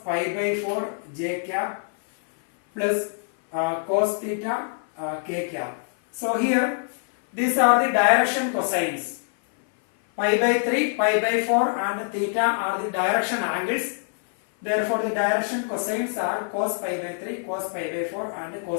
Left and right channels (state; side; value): silent; right; 57 dB below the other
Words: by 4 j cap plus cos theta k cap. So here these are the direction cosines. Pi by 3, pi by 4 and theta are the direction angles. Therefore the direction cosines are cos pi by 3, cos pi by 4 and